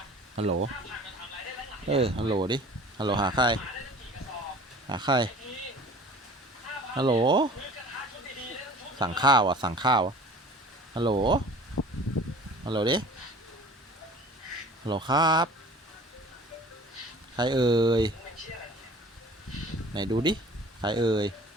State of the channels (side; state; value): both; normal; correlation 0.45